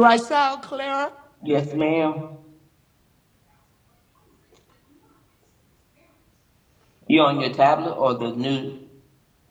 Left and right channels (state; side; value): identical; both; correlation 1.00